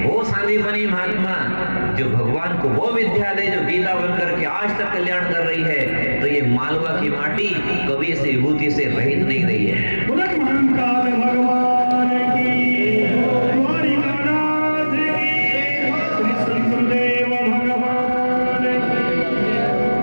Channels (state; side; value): inverted; both; correlation -1.00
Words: वो सांदीपनी महात्मा जो भगवान को वो विद्या दे जो गीता बनकर के आज तक कल्याण कर रही है, तो ये मालवा की माटी कभी इस विभूति से रहित नहीं रही है। भगवान की